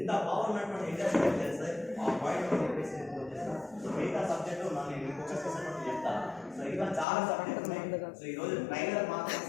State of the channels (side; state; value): right; drops out; at 7.1 s